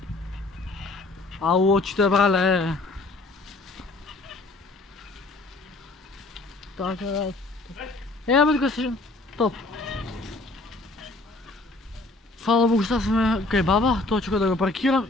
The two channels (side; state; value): right; quieter; 3.1 dB